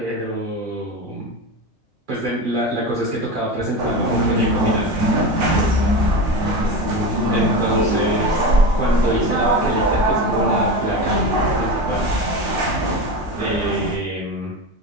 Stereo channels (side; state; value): both; normal; correlation 0.24